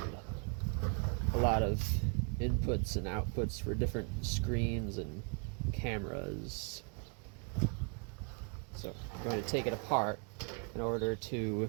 a lot of inputs and outputs for different screens and cameras. So I'm going to take it apart in order to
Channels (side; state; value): left; quieter; 37.7 dB